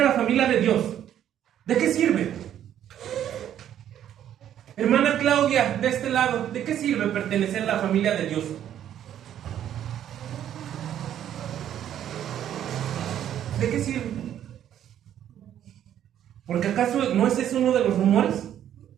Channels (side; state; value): left; quieter; 10.6 dB